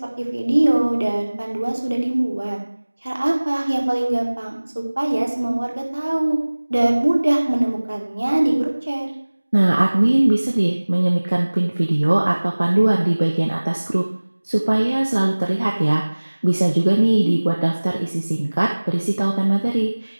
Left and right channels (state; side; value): inverted; both; correlation -1.00